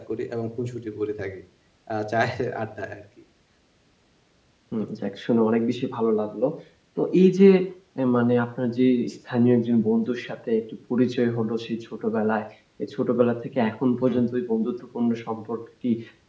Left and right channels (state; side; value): identical; both; correlation 1.00